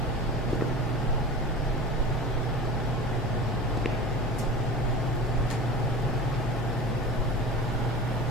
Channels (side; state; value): both; normal; correlation 0.33